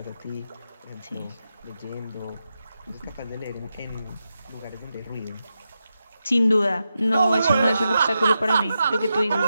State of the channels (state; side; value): inverted; both; correlation -0.88